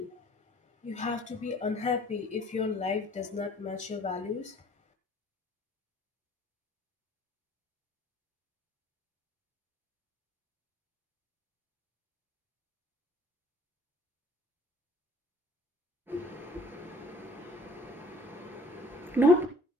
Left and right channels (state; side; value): normal; both; correlation 0.54